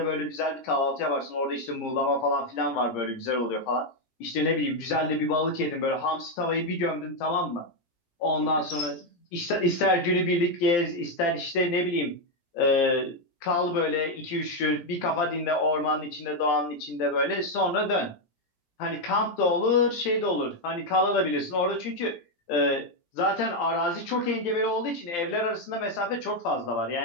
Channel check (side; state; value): right; late; 17 ms